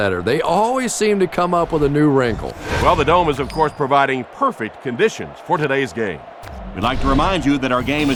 They always seem to come up with a new wrinkle. Well, the Dome is, of course, providing perfect conditions for today's game. We'd like to remind you that our game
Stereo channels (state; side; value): identical; both; correlation 1.00